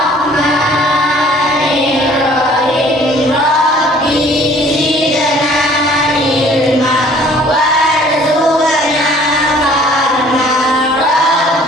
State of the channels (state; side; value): normal; both; correlation 0.54